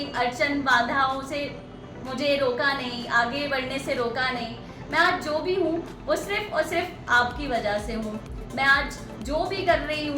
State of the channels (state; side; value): identical; both; correlation 1.00